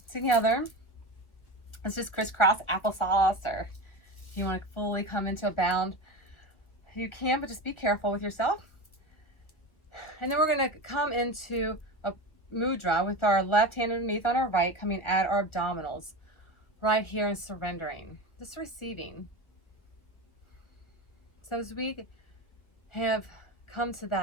together. Let's just crisscross applesauce, or you want to fully come into a bound. You can, but just be careful with yourself. And then we're going to come into a mudra with our left hand underneath on our right, coming at our abdominals. right here and surrendering, just receiving. So as we have come to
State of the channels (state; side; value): late; right; 1.6 ms